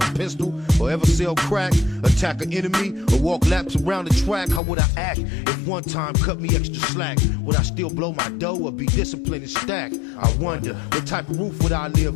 a pistol, or ever sell crack? Attack an enemy, or walk laps around the track? How would I act if one time cut me extra slack? Would I still blow my dough or be disciplined and stack? I wonder, what type of roof would I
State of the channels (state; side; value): drops out; right; at 4.6 s